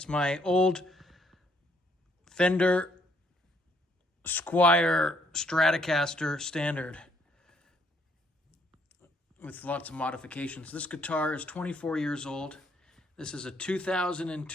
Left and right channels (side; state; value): both; normal; correlation 0.69